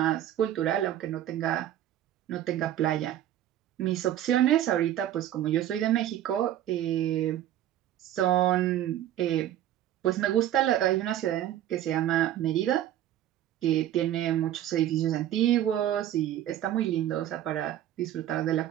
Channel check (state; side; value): quieter; left; 12.1 dB